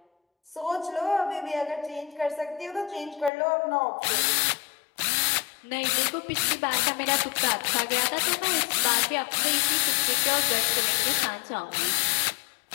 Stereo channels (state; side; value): drops out; right; at 3.3 s